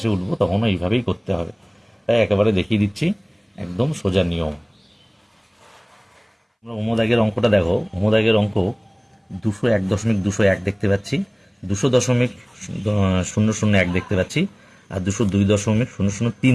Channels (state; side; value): identical; both; correlation 1.00